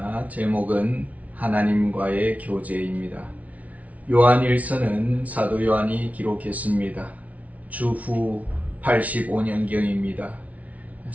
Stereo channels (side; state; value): left; late; 0.069 ms